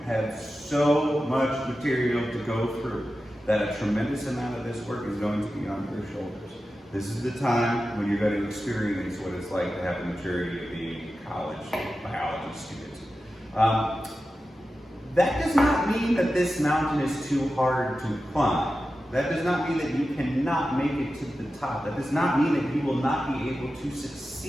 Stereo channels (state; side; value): normal; both; correlation 0.92